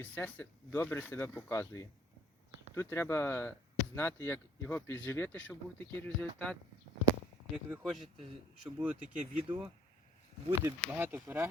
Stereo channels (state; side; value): normal; both; correlation 0.58